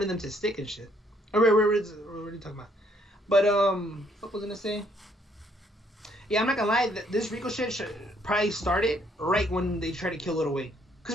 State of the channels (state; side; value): normal; both; correlation 0.68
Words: of them to stick and shit. What are you talking about? But what was I gonna say? Yeah, I'm not gonna lie. This RICO shit probably started right when they tried to kill Lil Wayne. Cause